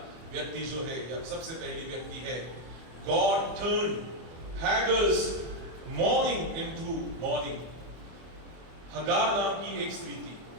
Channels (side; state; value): left; late; 25 ms